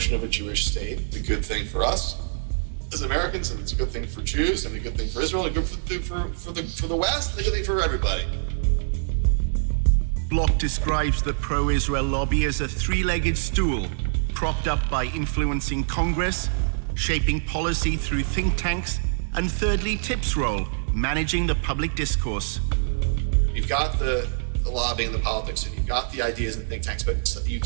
of a Jewish state is a good thing for us as Americans, and it's a good thing for Jews, and a good thing for Israel, and a good thing for the West, and a good thing for everybody. Block describes the pro-Israel lobby as a three-legged stool, propped up by influencing Congress, shaping policy through think tanks, and thirdly, TIP's role, managing the public discourse. You've got the lobbying, the politics, and you've got the ideas and think tanks, but you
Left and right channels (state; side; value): silent; left; digital silence